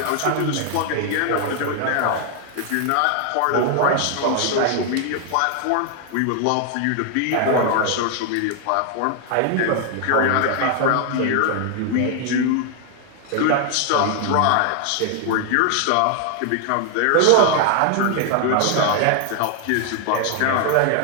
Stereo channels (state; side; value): different; both; correlation 0.00